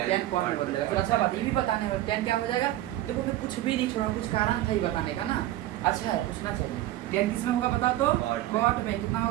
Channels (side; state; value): left; quieter; 14.8 dB